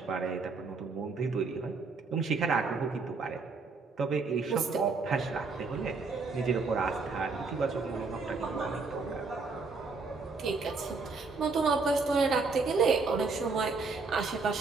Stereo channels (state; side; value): quieter; left; 4.2 dB